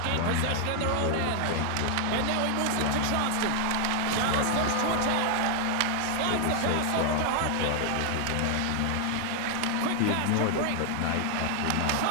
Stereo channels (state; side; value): different; both; correlation 0.00